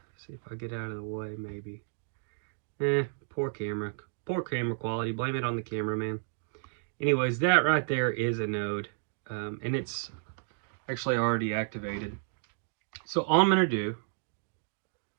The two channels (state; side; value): silent; left; digital silence